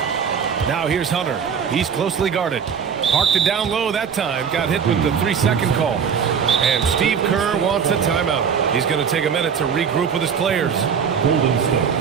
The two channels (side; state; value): left; quieter; 7.0 dB